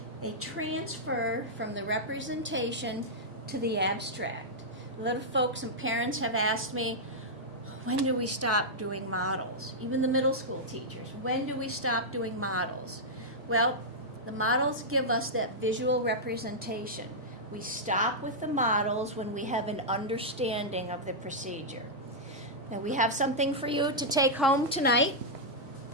They transfer from the representation to the abstract. A lot of folks and parents have asked me, when do we stop doing models? Even the middle school teachers, when do we stop doing models? Well, the models give us that visual representation. We stop with the models when we have an understanding of the procedure. Now we have something for you to take home tonight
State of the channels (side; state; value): both; normal; correlation -0.08